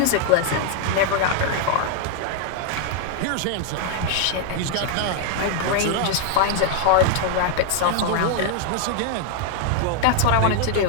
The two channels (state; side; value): different; both; correlation 0.00